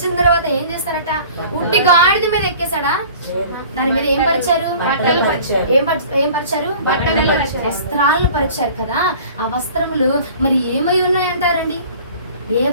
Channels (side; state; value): both; inverted; correlation -0.46